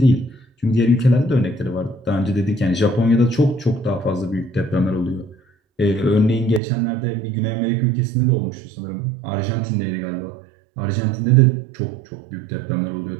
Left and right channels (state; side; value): drops out; left; at 6.6 s